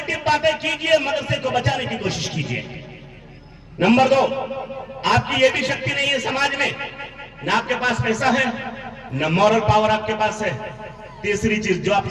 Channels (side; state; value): both; identical; correlation 1.00